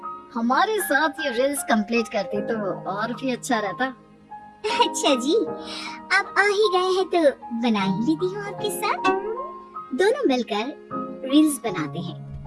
हमारे साथ ये रील्स कंप्लीट करती तो और भी अच्छा रहता। अच्छा जी, अब आ ही गए हैं तो बना ही लेती हूँ आपके साथ। दोनों मिलकर रील्स बनाते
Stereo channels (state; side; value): identical; both; correlation 1.00